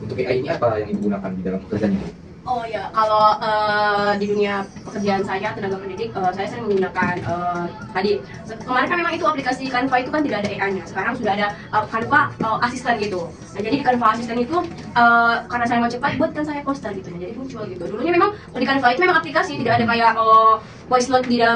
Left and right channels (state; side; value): identical; both; correlation 1.00